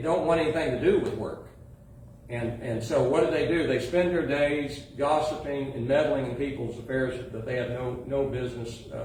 don't want anything to do with work. And so what do? They spend their days gossiping and meddling in people's affairs that they have no business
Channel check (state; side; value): identical; both; correlation 1.00